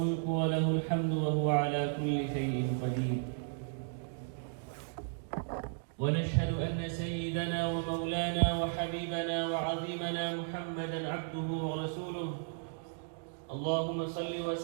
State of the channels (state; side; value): silent; left; digital silence